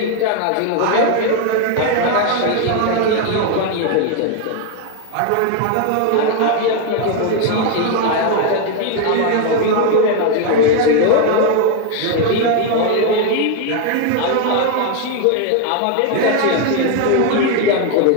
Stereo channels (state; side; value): different; both; correlation 0.01